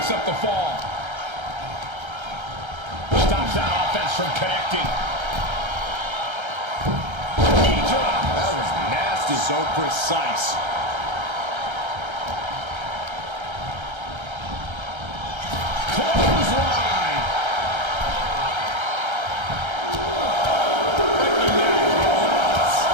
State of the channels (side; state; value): left; late; 1.3 ms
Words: up the fall. Stops that offense from connecting. That was nasty. So precise. Clothesline.